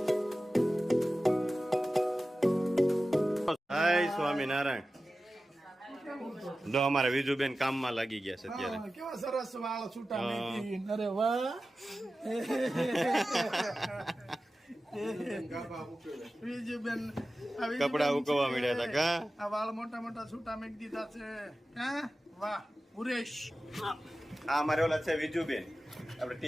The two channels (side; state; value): both; normal; correlation 0.95